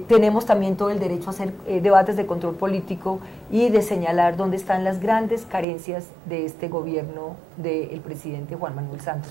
tenemos también todo el derecho a hacer debates de control político y de señalar dónde están las grandes carencias de este gobierno del presidente Juan Manuel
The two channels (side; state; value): left; drops out; at 5.7 s